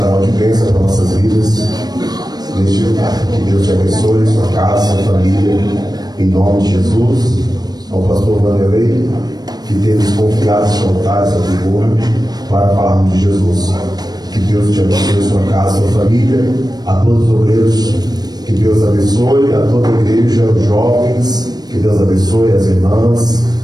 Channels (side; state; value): left; late; 0.19 ms